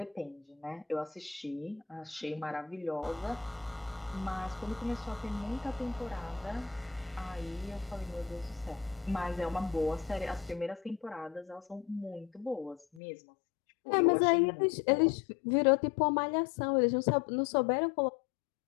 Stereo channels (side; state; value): right; drops out; at 13.0 s